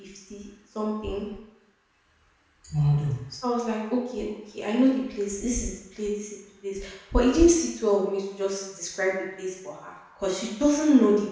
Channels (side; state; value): both; identical; correlation 1.00